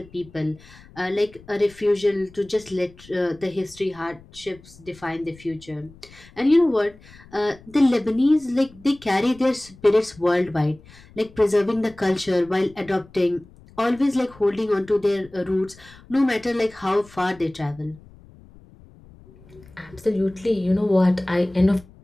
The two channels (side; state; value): left; noise; rumble, 23 dB below the sound